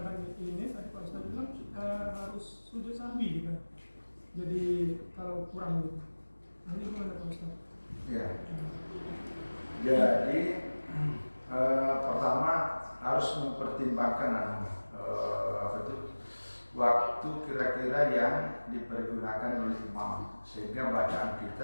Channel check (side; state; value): both; inverted; correlation -1.00